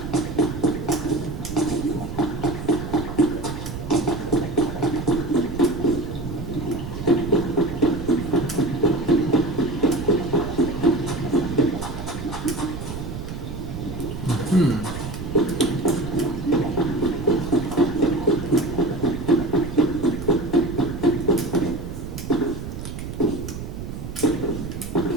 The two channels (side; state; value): right; noise; rumble, 8 dB below the sound